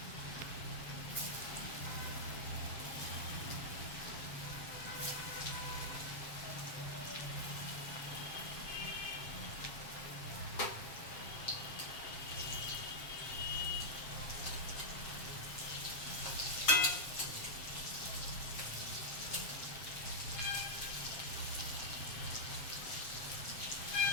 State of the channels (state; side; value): late; right; 7.4 ms